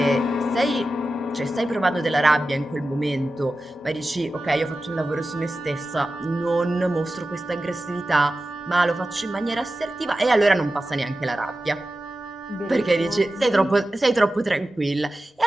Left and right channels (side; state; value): both; normal; correlation 0.93